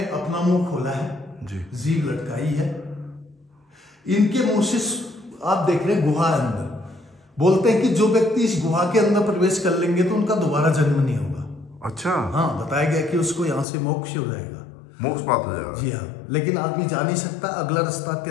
अपना मुंह खोला है जी, जीभ लटकाई है। इनके मुंह से आप देख रहे हैं गुहा अंदर, बोलते हैं कि जो व्यक्ति इस गुहा के अंदर प्रवेश कर लेंगे तो उनका दोबारा जन्म नहीं होगा। अच्छा, हाँ, बताया गया कि उसको यहाँ से मोक्ष हो जाएगा, मोक्ष प्राप्त हो जाएगा जी हाँ। लेकिन आदमी जा नहीं सकता, अगला रास्ता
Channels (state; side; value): drops out; right; at 13.7 s